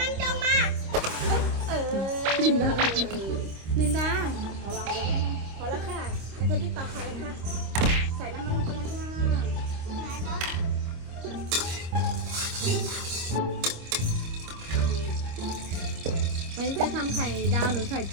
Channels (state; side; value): late; left; 26 ms